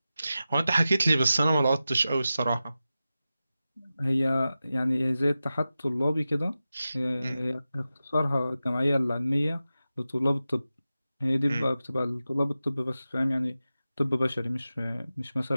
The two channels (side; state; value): both; inverted; correlation -0.94